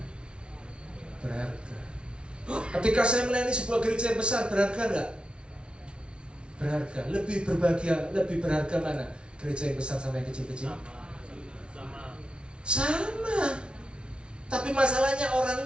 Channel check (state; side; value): late; left; 0.058 ms